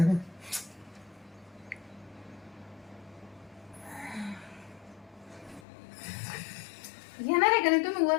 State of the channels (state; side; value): drops out; right; at 5.7 s